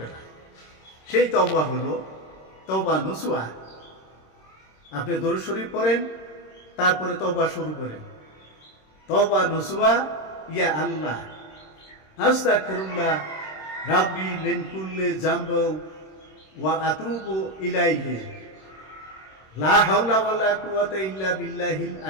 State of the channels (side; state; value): right; late; 26 ms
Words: না। সেই তওবা হলো তওবা নসুহা। আপনি দরুদ শরীফ পড়েন, তারপরে তওবা শুরু করেন। তওবা নসুহা, ইয়া আল্লাহ আস্তাগফিরুল্লাহ রাব্বি মিন কুল্লি যামবি ওয়া আতুবু ইলাইহি লা হাওলা ওয়ালা কুওয়াতা ইল্লা বিল্লাহিল